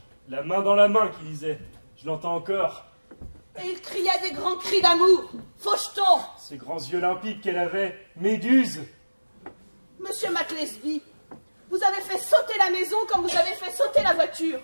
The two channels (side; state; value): both; inverted; correlation -1.00